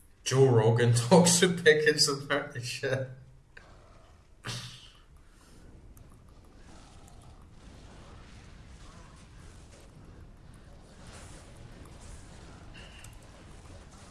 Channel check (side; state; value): both; identical; correlation 1.00